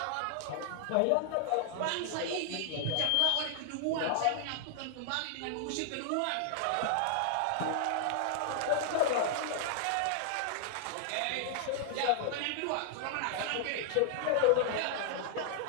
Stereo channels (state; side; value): different; both; correlation -0.01